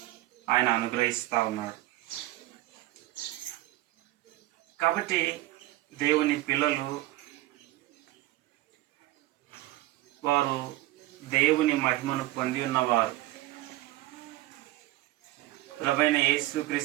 ఆయన అనుగ్రహిస్తూ ఉన్నాడు. కాబట్టి దేవుని పిల్లలు వారు దేవుని మహిమను పొంది ఉన్నవారు, ప్రభువైన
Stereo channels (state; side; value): quieter; left; 17.1 dB